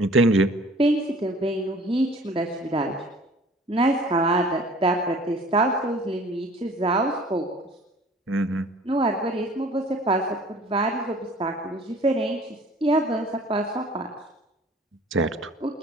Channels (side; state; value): both; normal; correlation 0.50